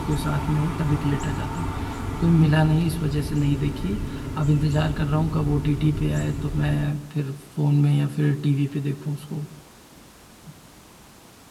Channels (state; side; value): identical; both; correlation 1.00